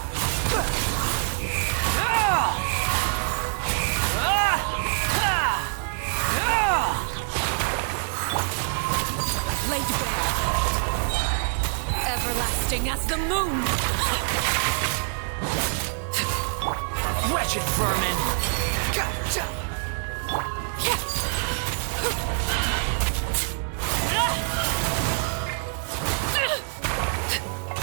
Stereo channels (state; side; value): silent; left; digital silence